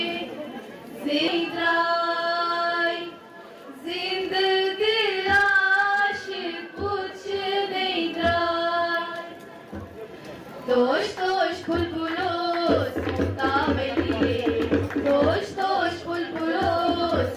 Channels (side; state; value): both; identical; correlation 1.00